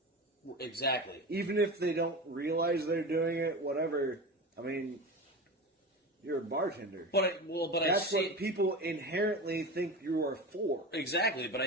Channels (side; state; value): both; normal; correlation 0.27